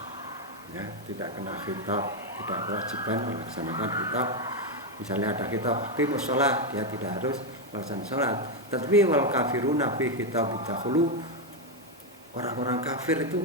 ya, tidak kena khitab, tidak kewajiban melaksanakan khitab. Misalnya ada khitab aqimus shalah, dia tidak harus melaksanakan salat. Tetapi wal kafiruna fi khitab dakhulu, orang-orang kafir itu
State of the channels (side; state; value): both; normal; correlation 0.04